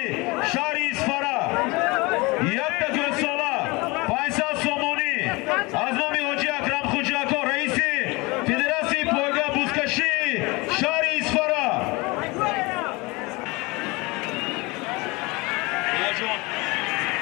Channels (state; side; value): quieter; right; 24.9 dB